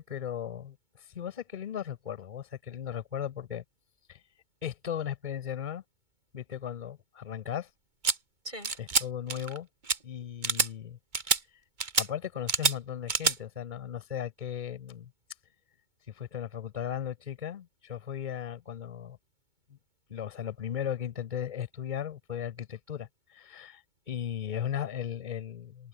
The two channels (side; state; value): left; late; 2.2 ms